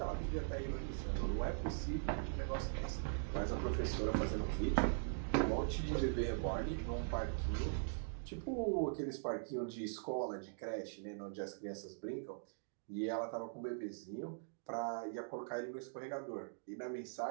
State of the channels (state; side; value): silent; left; digital silence